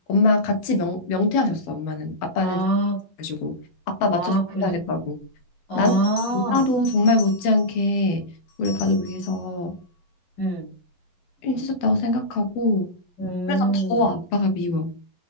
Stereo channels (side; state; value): right; late; 12 ms